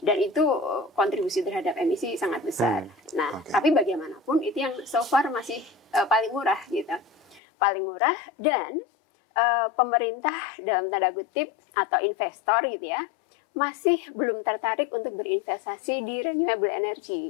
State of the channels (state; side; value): drops out; right; at 7.4 s